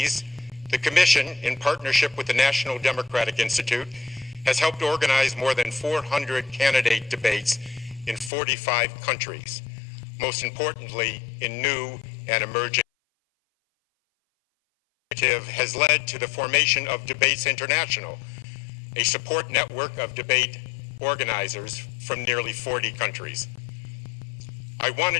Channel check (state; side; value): drops out; right; at 8.3 s